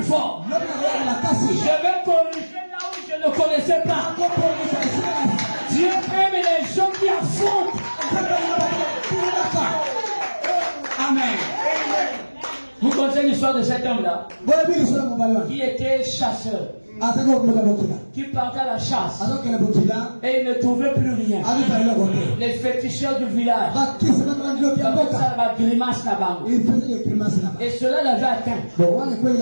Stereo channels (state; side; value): inverted; both; correlation -1.00